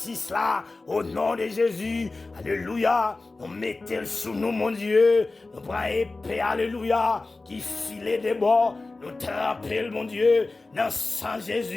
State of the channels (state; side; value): quieter; right; 3.4 dB